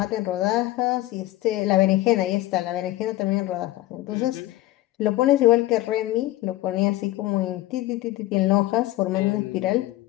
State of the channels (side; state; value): right; quieter; 16.6 dB